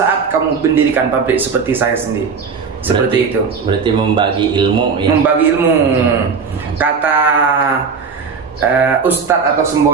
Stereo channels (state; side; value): quieter; left; 5.5 dB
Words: kamu mendirikan pabrik seperti saya sendiri. Seperti itu. Berarti membagi ilmu ya. Membagi ilmu. Kata Ustadz atau